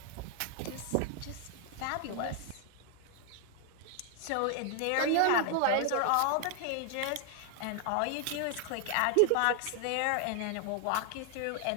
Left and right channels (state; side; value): different; both; correlation 0.00